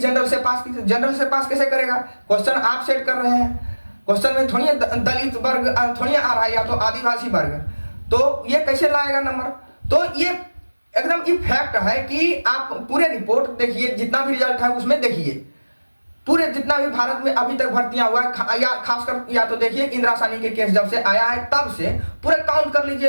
से पास कैसे करेगा? क्वेश्चन आप सेट कर रहे हैं, क्वेश्चन में थोड़ी दलित वर्ग थोड़ी आ रहा है या तो आदिवासी वर्ग, तो ये कैसे लाएगा नंबर? तो ये एकदम ये फैक्ट है कि आप पूरे रिपोर्ट देखिए, जितना भी रिजल्ट है उसमें देखिए, पूरे जितना भी भारत में अभी तक भर्तियां हुआ है या खासकर या तो देखिए इंदिरा साहनी के केस जब से आया है तब से पूरे काउंट कर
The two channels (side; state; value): both; inverted; correlation -1.00